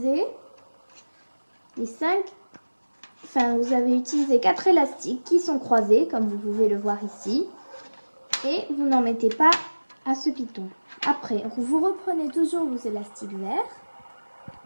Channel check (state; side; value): inverted; both; correlation -1.00